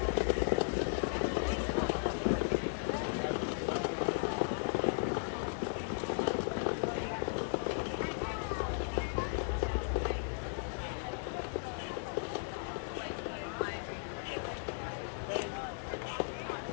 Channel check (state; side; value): silent; right; digital silence